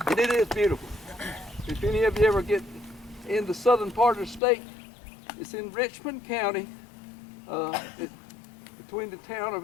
And it is beautiful. If any of you ever get in the southern part of the state, it's in Richmond County, between the town of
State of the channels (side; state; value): right; drops out; at 4.4 s